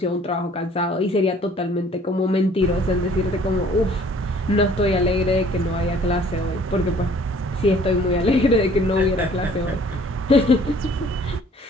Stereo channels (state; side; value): normal; both; correlation 0.55